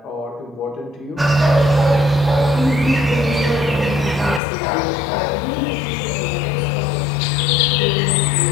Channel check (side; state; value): right; drops out; at 4.4 s